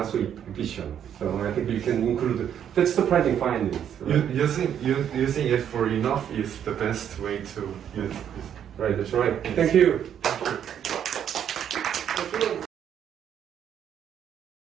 so efficient. So I think you can include that's surprising findings. Right? Using it for enough is the best way to use it. Right, that's right. Thank you.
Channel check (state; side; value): quieter; left; 9.2 dB